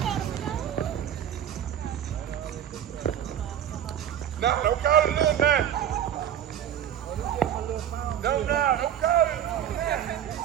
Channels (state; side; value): quieter; left; 10.3 dB